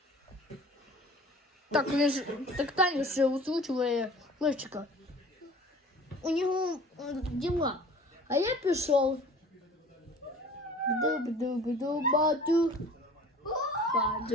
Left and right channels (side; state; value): both; normal; correlation 0.45